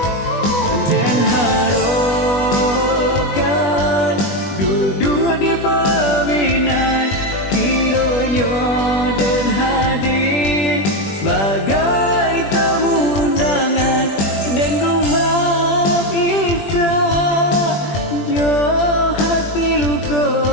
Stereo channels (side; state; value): right; late; 20 ms